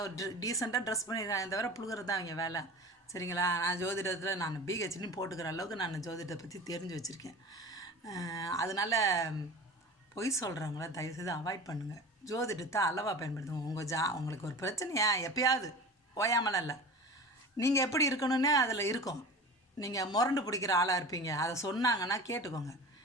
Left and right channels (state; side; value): normal; both; correlation 0.35